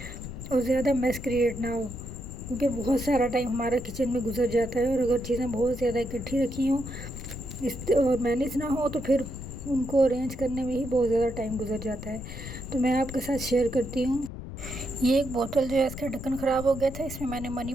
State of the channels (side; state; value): left; noise; rumble, 9 dB below the sound